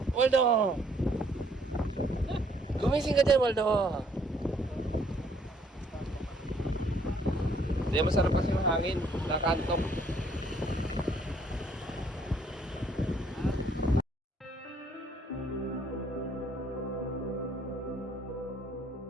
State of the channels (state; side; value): normal; both; correlation 0.64